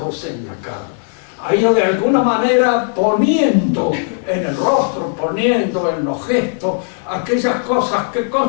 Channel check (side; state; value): right; silent; 56 dB below the other